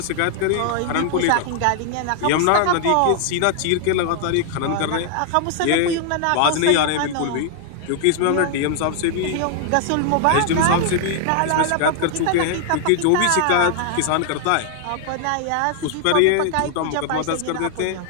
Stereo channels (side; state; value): both; different; correlation 0.00